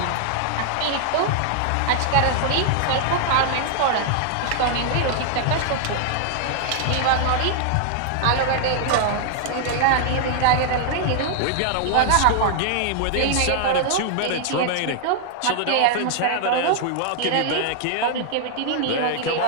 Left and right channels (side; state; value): both; different; correlation 0.00